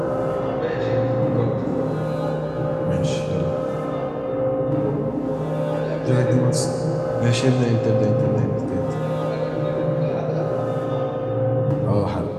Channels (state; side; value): identical; both; correlation 1.00